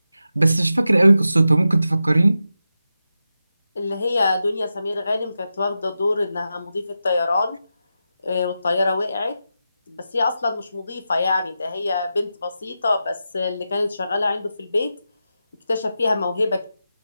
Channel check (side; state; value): both; inverted; correlation -0.90